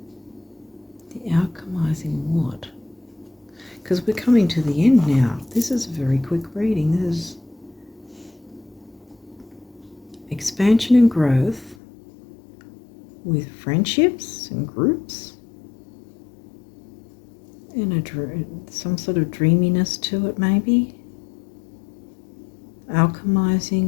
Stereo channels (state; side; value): drops out; right; at 11.8 s